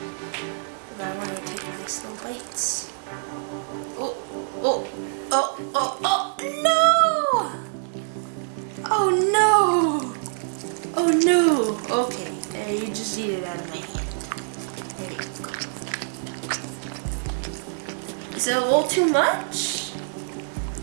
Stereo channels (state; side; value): silent; left; digital silence